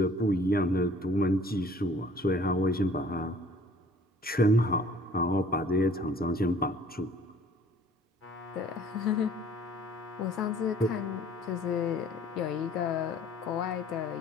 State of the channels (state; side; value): normal; both; correlation 0.53